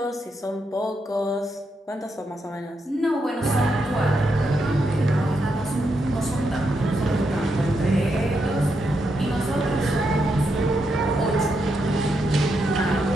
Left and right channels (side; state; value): both; normal; correlation 0.82